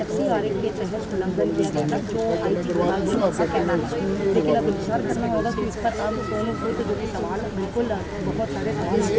FCRA के तहत उल्लंघन किया गया था जो IT विभाग का कहना है लेकिन अब इंतजार करना होगा कि इस पर अब सोनू सूद जो कि सवाल बिल्कुल बहुत सारे सवाल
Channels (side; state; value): both; identical; correlation 1.00